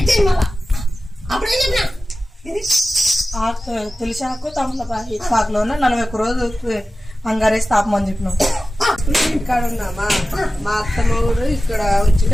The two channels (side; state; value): both; normal; correlation 0.95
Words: తులసి ఆకు తమలపాకులోన 41 రోజులు అంగారేసి తాపమని చెప్పినాం. ఇక్కడ ఉన్నామా, మా అత్తమ్మ కూడా ఇక్కడ